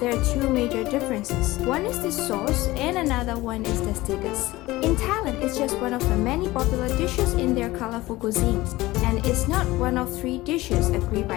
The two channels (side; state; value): right; quieter; 18.8 dB